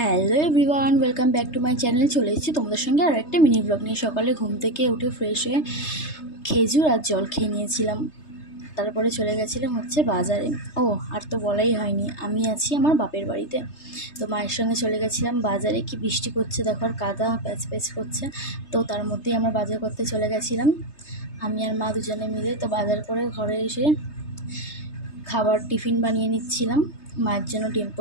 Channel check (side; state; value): right; late; 3.3 ms